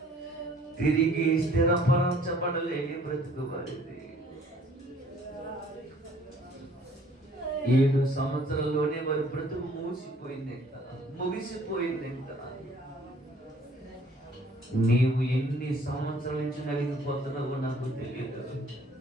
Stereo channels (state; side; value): normal; both; correlation 0.57